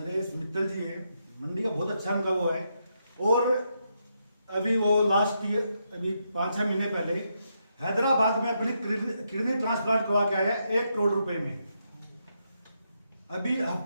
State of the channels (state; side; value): inverted; both; correlation -0.81